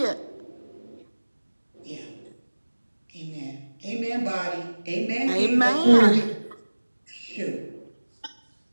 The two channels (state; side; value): inverted; both; correlation -1.00